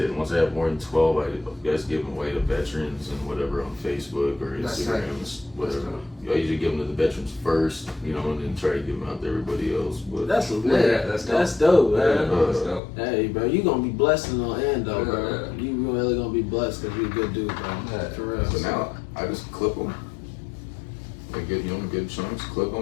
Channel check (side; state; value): right; drops out; at 12.8 s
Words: Once I have more than 12, I guys give them away to veterans and whatever on Facebook or Instagram, whatever. I usually give them to the veterans first, you know, and then try to give them out to everybody else. But That's lit. That's dope, man. That's dope. Hey, bro, you gonna be blessed in the end, though, bro. You really gonna be blessed because you're a good dude, bro. For real. So now I just clip them. Like good, you know, good chunks. Clip